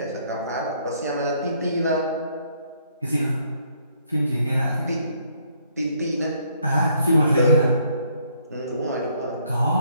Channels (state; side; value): inverted; both; correlation -0.68